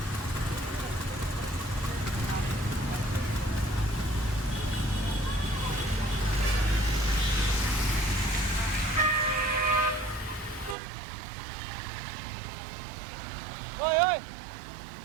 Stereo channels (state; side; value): drops out; left; at 10.8 s